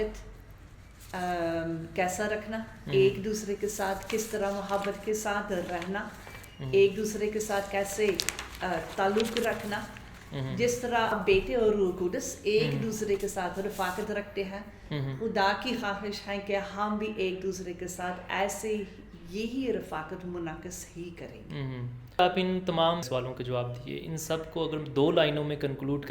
کیسا رکھنا، ایک دوسرے کے ساتھ کس طرح محبت کے ساتھ رہنا، ایک دوسرے کے ساتھ کیسے تعلق رکھنا، جس طرح بیٹے اور روح القدس ایک دوسرے کے ساتھ رفاقت رکھتے ہیں، خدا کی خواہش ہے کہ ہم بھی ایک دوسرے کے ساتھ ایسے یہی رفاقت منعکس ہی کریں گے۔ آپ ان تمام سوالوں کے جواب دیے، ان سب کو اگر 2 لائنوں میں کنکلوڈ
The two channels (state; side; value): identical; both; correlation 1.00